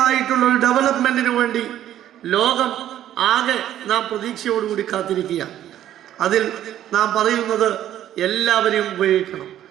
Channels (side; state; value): left; quieter; 11.9 dB